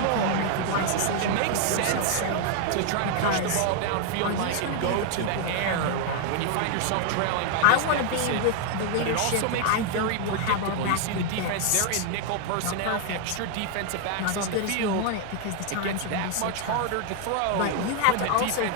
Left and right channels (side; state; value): both; different; correlation 0.00